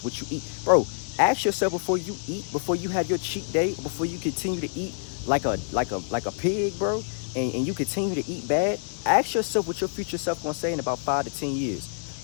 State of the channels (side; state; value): right; silent; 60 dB below the other